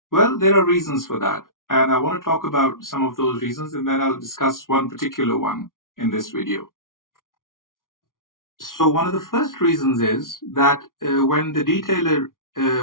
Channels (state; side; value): late; right; 0.89 ms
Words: Well, there are reasons for that, and I want to talk about some of those reasons, and then I'll discuss one particular one in this video. So one of the first reasons is that when the detailer,